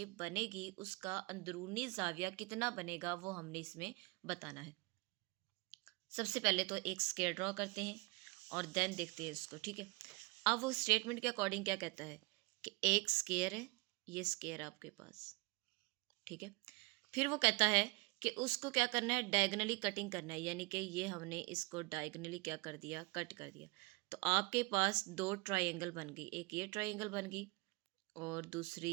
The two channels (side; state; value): left; quieter; 26.8 dB